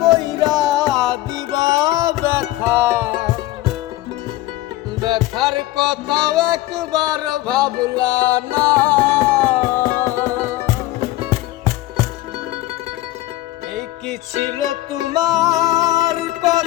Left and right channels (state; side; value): quieter; right; 16.6 dB